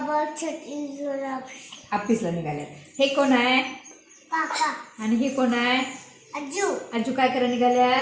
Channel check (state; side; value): identical; both; correlation 1.00